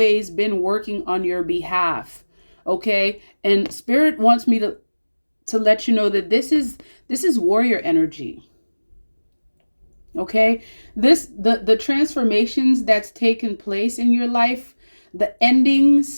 been working on your behalf. Okay? And Spirit wants me to let you know that this is warrior energy. Okay? The transformations that's taken place in your life, the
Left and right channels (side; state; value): both; inverted; correlation -1.00